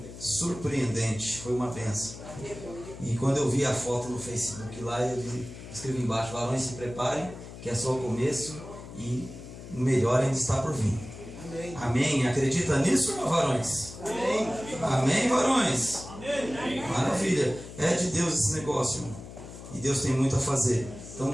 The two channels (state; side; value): noise; left; hum, 14 dB below the sound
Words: surpreendente, foi uma bênção. E quando eu vi a foto no Facebook lá, eu escrevi embaixo: varões, se preparem, que é só o começo e o melhor ainda está por vir. Amém. Amém. Acredita nisso, meu varões? Amém. Amém, varões? Amém. Maravilha. É de Deus esse negócio, irmão. E Deus tem muito a fazer.